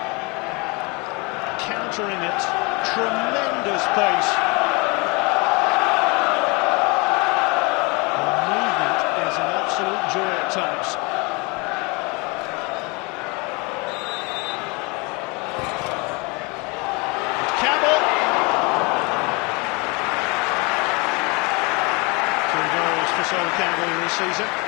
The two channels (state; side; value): quieter; right; 28.4 dB